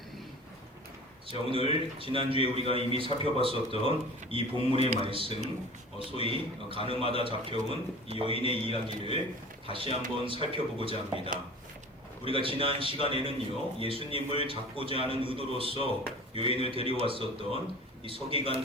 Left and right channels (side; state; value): both; normal; correlation 0.40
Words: 자, 오늘 지난주에 우리가 이미 살펴봤었던 이 본문의 말씀, 소위 가늠하다 잡혀온 이 여인의 이야기를 다시 한번 살펴보고자 합니다. 우리가 지난 시간에는요, 예수님을 잡고자 하는 의도로서 여인을 데려왔었던 이